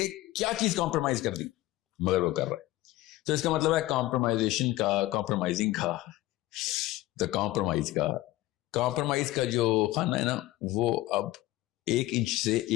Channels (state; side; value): quieter; right; 17.3 dB